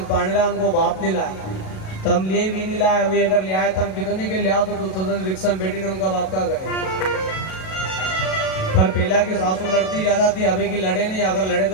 पाने ला उनको बाप नहीं लाया तम लिए भी नहीं लाया अभी अगर ले आए तम कितने के ले आओ तो दूसरे दिन रिक्शा में बैठी ने उनका बाप का करे पर पहला की सासू लड़ती ज्यादा थी अभी की लड़े नहीं अगर लड़े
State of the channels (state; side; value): late; right; 37 ms